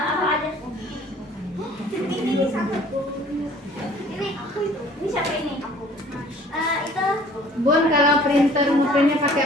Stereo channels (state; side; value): normal; both; correlation 0.53